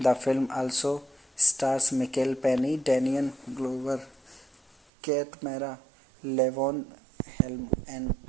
film also stars Michael Penny, Daniel Glover, Kate Mara, Levon Helm, and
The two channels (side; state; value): left; drops out; at 4.8 s